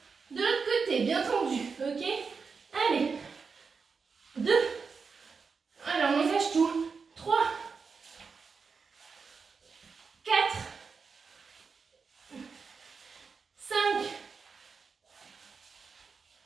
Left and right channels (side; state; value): left; quieter; 5.2 dB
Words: de l'autre côté, bien tendue. Ok? Allez. 2. Alors, on engage tout. 3. 4. 5.